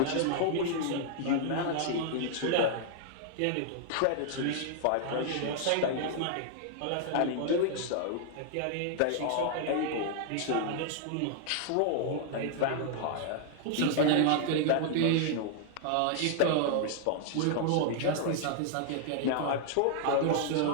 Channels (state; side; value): different; both; correlation -0.01